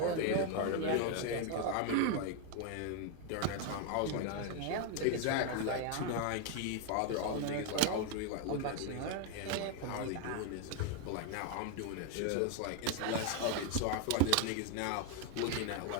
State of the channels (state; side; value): different; both; correlation 0.01